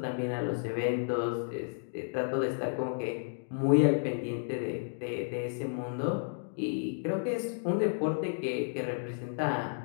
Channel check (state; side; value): silent; right; digital silence